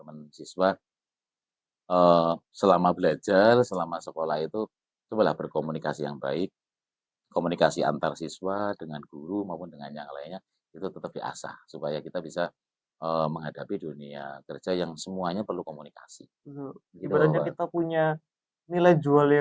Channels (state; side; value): identical; both; correlation 1.00